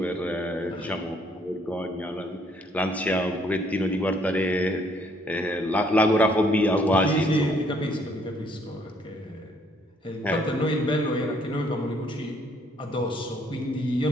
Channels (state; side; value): normal; both; correlation 0.66